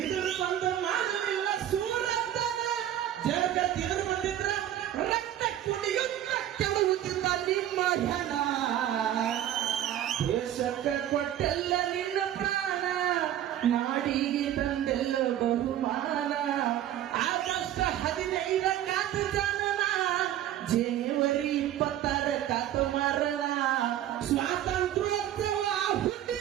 ಬಂದು ಮಾಡಲಿಲ್ಲ ಸೂರನ್ನ. ಜಗತ್ತಿನ ಬಂದಿದ್ರ ರಕ್ತ ಕುಡಿಯುತ್ತ ಕೆಡುವುದಿಲ್ಲ ನಿಮ್ಮ ಹೆಣ. ದೇಶಕ್ಕೆ ಕೊಟ್ಟೆಲ್ಲ ನಿನ್ನ ಪ್ರಾಣ, ನಾಡಿಗೆ ತಂದೆಲ್ಲ ಬಹುಮಾನ. ಆಗಸ್ಟ್ 15 ಕಾತ ಜನನ, ಜನವರಿ 26 ಕಾತ ಮರಣ. ಸ್ವಾತಂತ್ರ್ಯೋತ್ಸವ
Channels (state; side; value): quieter; left; 11.8 dB